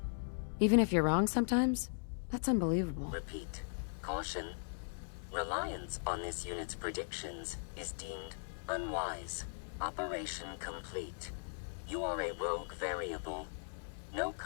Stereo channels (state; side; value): silent; right; digital silence